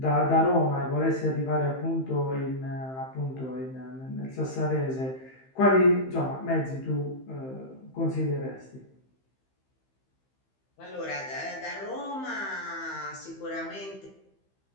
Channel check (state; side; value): late; right; 15 ms